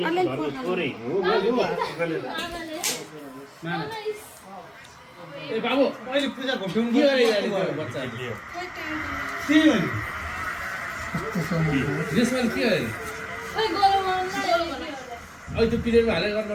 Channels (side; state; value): both; identical; correlation 1.00